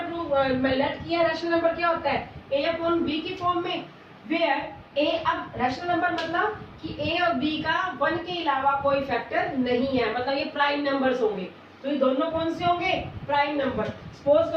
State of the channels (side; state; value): both; identical; correlation 1.00